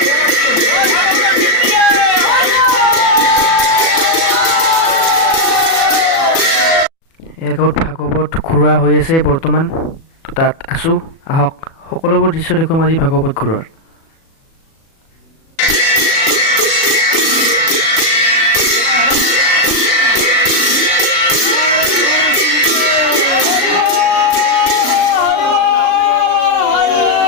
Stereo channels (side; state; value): right; late; 37 ms